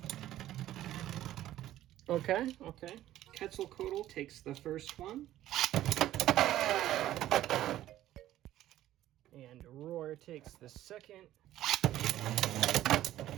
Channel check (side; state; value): left; quieter; 13.6 dB